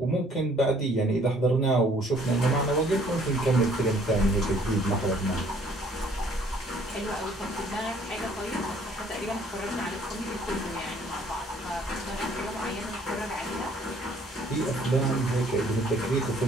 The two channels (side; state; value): both; normal; correlation 0.60